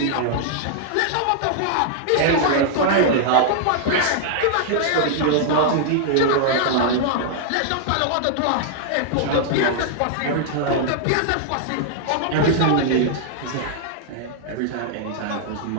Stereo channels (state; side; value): different; both; correlation -0.01